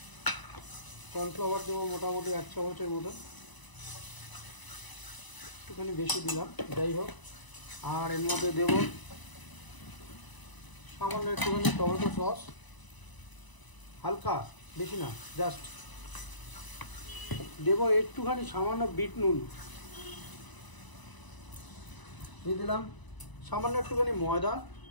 কর্নফ্লাওয়ার দেবো মোটামুটি 1 চামচের মতো, একটুখানি বেশি দিলাম, যাই হোক। আর এর মধ্যে দেবো সামান্য একটুখানি টমেটো সস, হালকা, বেশি না, জাস্ট দেবো একটুখানি সামান্য বিট নুন দিয়ে দিলাম, সামান্য একটুখানি ময়দা।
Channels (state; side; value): late; right; 1.0 ms